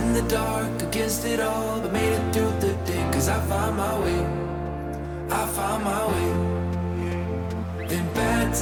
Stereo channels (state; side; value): identical; both; correlation 1.00